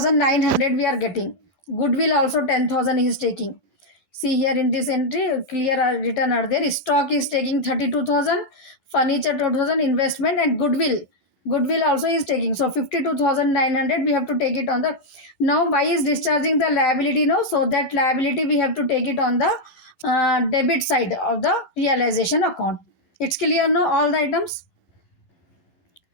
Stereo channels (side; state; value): right; late; 12 ms